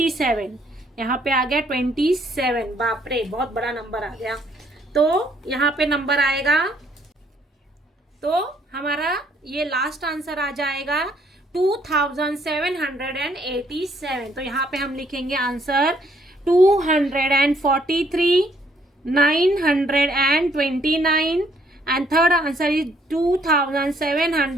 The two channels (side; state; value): both; normal; correlation 0.67